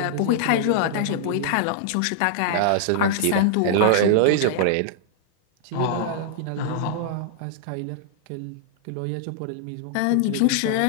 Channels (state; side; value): different; both; correlation -0.01